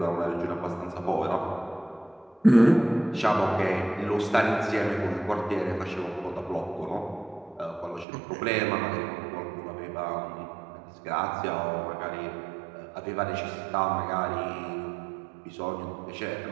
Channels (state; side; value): drops out; left; at 8.1 s